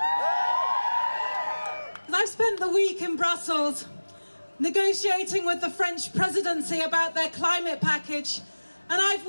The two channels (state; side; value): inverted; both; correlation -1.00